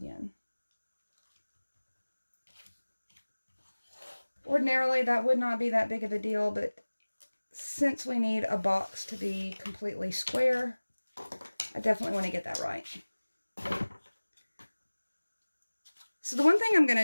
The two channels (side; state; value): both; inverted; correlation -1.00